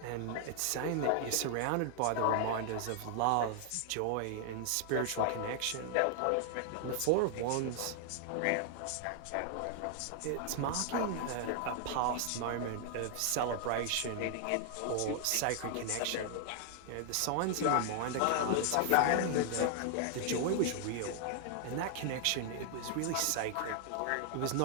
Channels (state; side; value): different; both; correlation 0.00